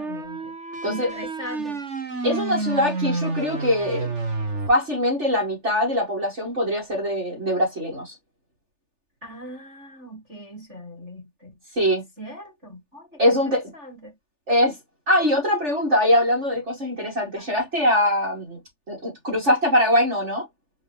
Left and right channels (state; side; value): late; left; 3.4 ms